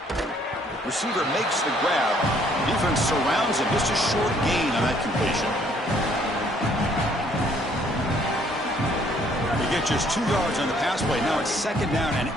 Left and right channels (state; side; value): normal; both; correlation 0.63